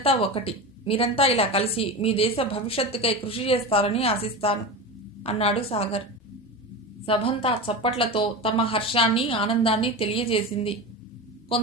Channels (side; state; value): both; normal; correlation 0.25